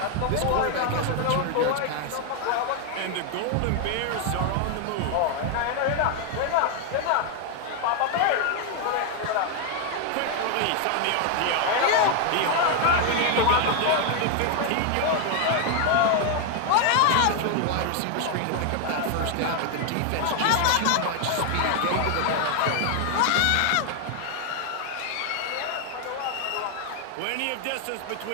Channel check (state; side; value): different; both; correlation 0.01